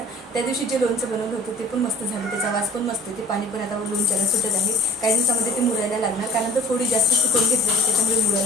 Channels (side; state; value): both; normal; correlation 0.49